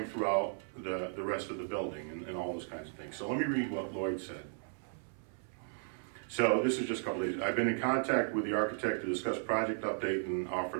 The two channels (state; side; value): silent; left; 54 dB below the other